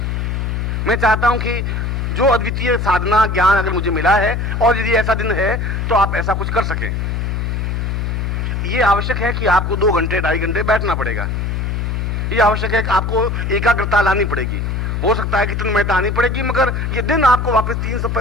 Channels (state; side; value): noise; left; hum, 1 dB below the sound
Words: मैं चाहता हूं कि जो अद्वितीय साधना ज्ञान अगर मुझे मिला है, और यदि ऐसा दिन है तो आप ऐसा कुछ कर सकें। ये आवश्यक है कि आपको 2 घंटे 2.5 घंटे बैठना पड़ेगा। ये आवश्यक है कि आपको एकाग्रता लानी पड़ेगी। हो सकता है कि तन्मयता आनी पड़ेगी, मगर ये दिन आपको वापस